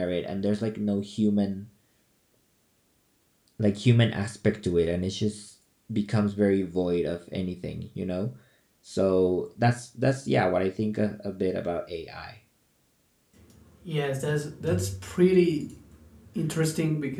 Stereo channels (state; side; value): identical; both; correlation 1.00